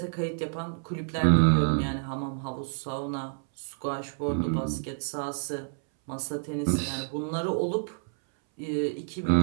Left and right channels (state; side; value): silent; left; 59 dB below the other